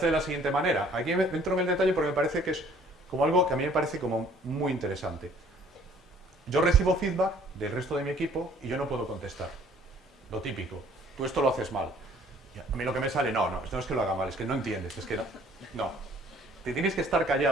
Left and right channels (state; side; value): normal; both; correlation 0.57